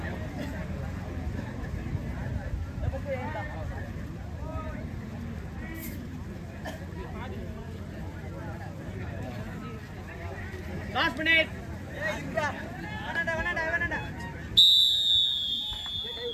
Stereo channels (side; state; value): both; identical; correlation 1.00